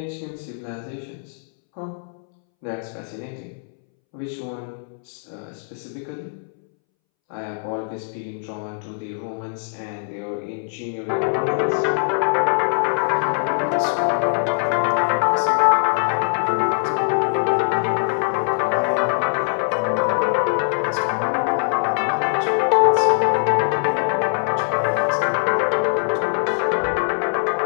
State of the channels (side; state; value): right; silent; 64 dB below the other